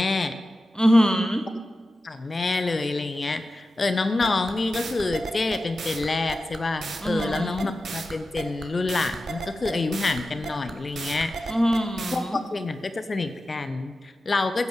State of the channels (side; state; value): both; normal; correlation 0.93